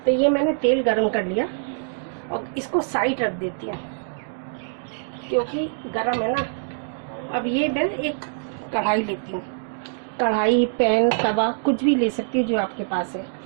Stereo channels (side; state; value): left; silent; digital silence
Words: तो ये मैंने तेल गर्म कर लिया और इसको साइड रख देती हूँ क्योंकि गर्म है ना। अब ये मैं एक कढ़ाई लेती हूँ, कढ़ाई, पैन, तवा कुछ भी ले सकती हूँ जो आपके पास है।